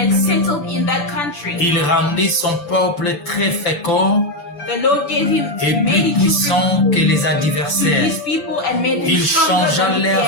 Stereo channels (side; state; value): right; late; 6.9 ms